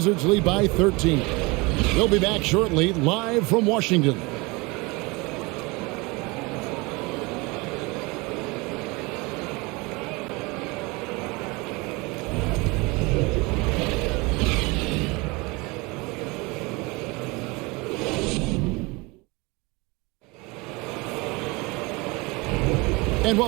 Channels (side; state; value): left; quieter; 25.5 dB